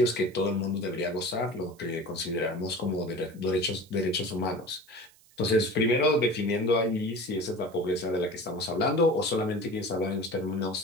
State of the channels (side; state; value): right; noise; hiss, 28 dB below the sound